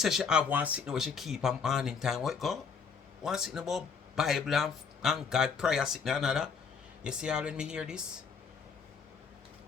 she have one sitting where she keep on morning time. What go? One sitting about Bible and God prayer sitting another. You see how when me hear this?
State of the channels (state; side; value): quieter; right; 5.9 dB